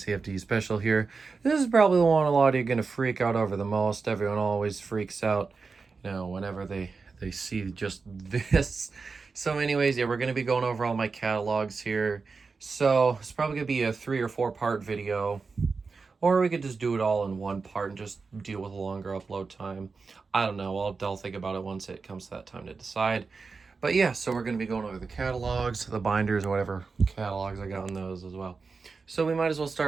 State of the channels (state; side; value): quieter; left; 4.6 dB